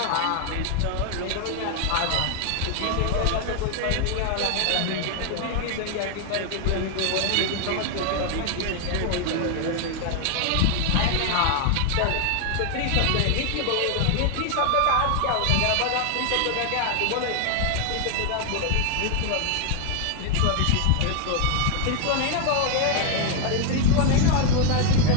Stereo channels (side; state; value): both; different; correlation 0.00